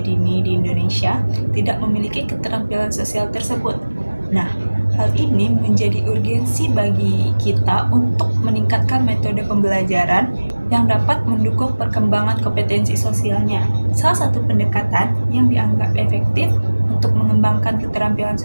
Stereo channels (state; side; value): inverted; both; correlation -1.00